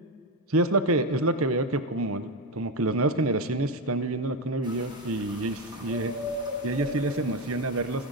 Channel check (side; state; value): both; normal; correlation 0.11